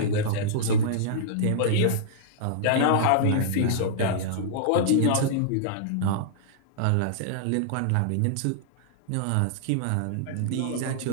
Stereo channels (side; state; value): both; different; correlation -0.02